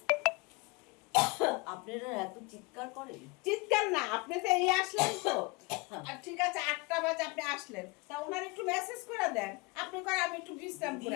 আপনারা এত চিৎকার করেন? চিৎকার না, আপনি তো এই আসলেন তো, আর ঠিক আছে 8টা বাজে আপনি আসলেন, তা ওনার একটু মেসেজ করে দেন, আপনি করে আমি একটু বিশ্রাম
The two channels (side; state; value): right; quieter; 26.6 dB